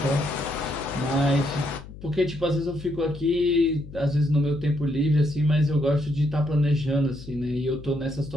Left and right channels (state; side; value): noise; left; hum, 15 dB below the sound